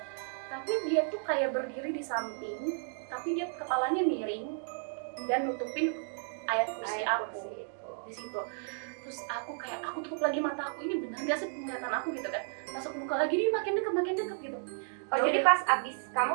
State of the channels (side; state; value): left; silent; digital silence